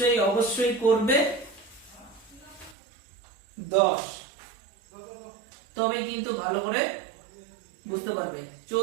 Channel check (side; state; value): left; drops out; at 2.8 s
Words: অবশ্যই করবে 10, তবে কিন্তু ভালো করে বুঝতে পারবে।